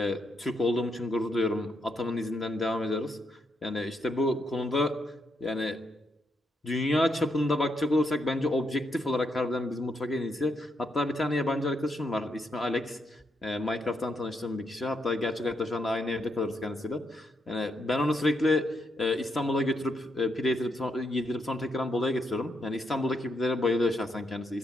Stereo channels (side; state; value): both; normal; correlation 0.79